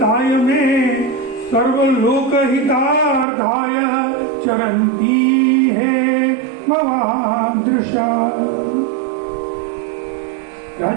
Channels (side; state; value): left; drops out; at 3.2 s